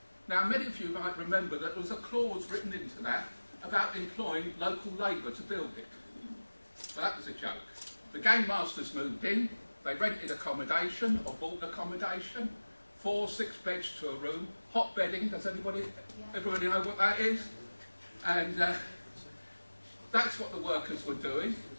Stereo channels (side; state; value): both; inverted; correlation -1.00